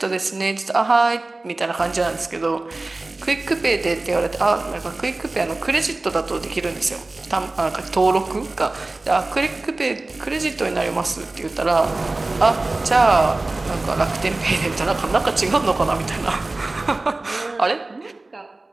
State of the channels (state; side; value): quieter; left; 3.1 dB